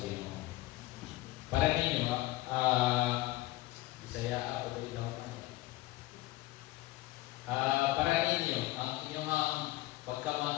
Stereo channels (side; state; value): right; quieter; 18.6 dB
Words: Ginoo. Para ninyo, Bisaya ako dito. Para ninyo, ang inyong